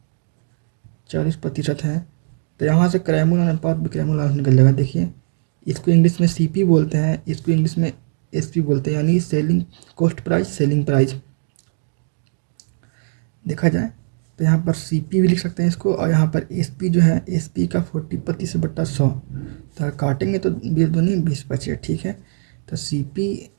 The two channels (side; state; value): left; silent; digital silence